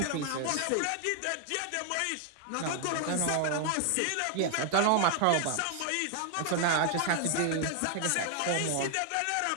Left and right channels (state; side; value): different; both; correlation 0.00